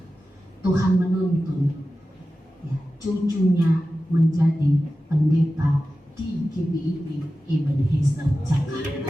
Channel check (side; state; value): both; normal; correlation 0.94